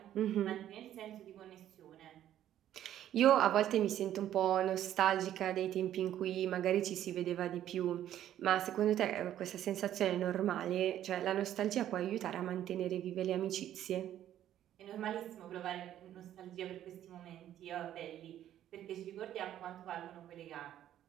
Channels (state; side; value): quieter; left; 11.6 dB